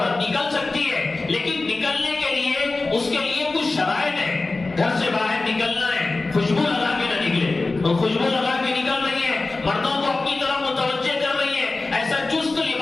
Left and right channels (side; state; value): right; quieter; 3.4 dB